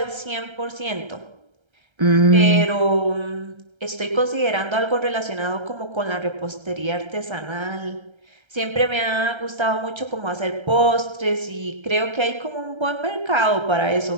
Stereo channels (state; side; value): late; left; 1.3 ms